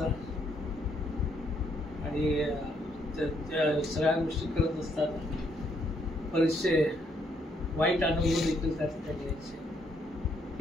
आणि त्या सगळ्या गोष्टी करत असताना बरेचसे वाईट अनुभव देखील त्या ठिकाणी यायचे.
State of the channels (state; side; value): normal; both; correlation 0.72